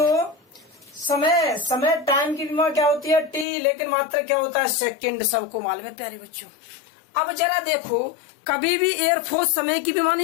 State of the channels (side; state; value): right; drops out; at 3.5 s